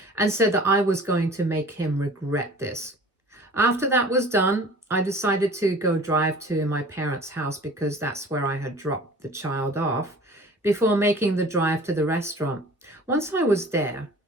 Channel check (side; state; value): both; normal; correlation 0.44